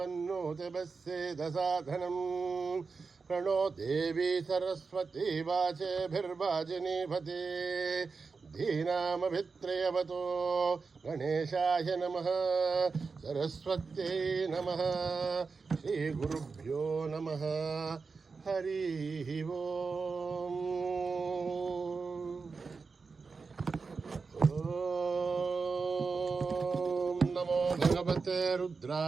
प्रणो देवी सरस्वती वाचेभिर्वाजिनीपते धीनामभित्रयवतो गणेशाय नमः सरस्वत्यै नमः श्रीगुरुभ्यो नमः हरिः ओम्। ॐ नमो भगवते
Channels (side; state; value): left; quieter; 4.7 dB